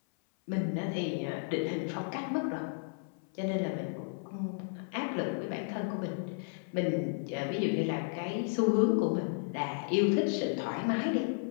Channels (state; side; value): silent; right; 56 dB below the other